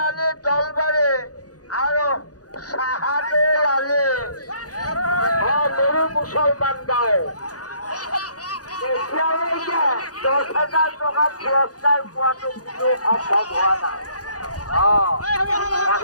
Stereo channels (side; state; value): right; late; 0.68 ms